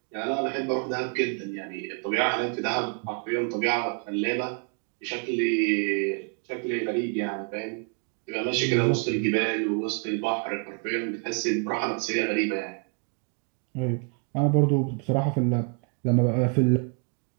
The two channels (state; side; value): quieter; left; 38.7 dB